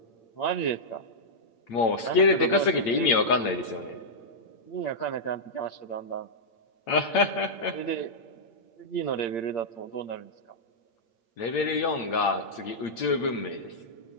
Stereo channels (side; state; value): right; late; 8.7 ms